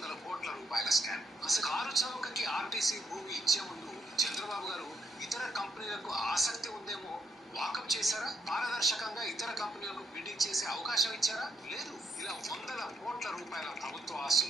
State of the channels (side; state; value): both; normal; correlation 0.77